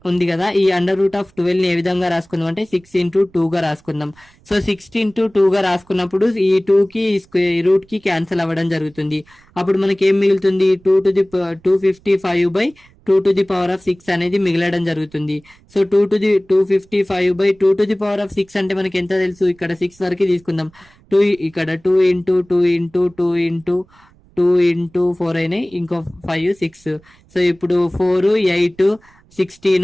ఉంది కదా, ఈ √12 ని ఏ విధంగా రాసుకుందాం అంటే 6 into 2 గా రాసుకుందాం. సో 6 into 2 గా రాసుకున్నప్పుడు ఈ 2 కి రూట్ కి క్యాన్సిల్ అవ్వడం జరుగుతుంది. అప్పుడు మనకి ఏం మిగులుతుంది, 255/2 అనేది మిగలడం జరుగుతుంది. సో 255/2 అంటే మనకి ఎంత తెలుసు, ఇక్కడ 6 వరకు తీసుకుందాం. 2 ఇక్కడ 2 into 2 into 2 into 2 into 4 అయినాయి, ఇంకో 5 6. సో ఇప్పుడు 4 8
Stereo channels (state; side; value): noise; right; rumble, 30 dB below the sound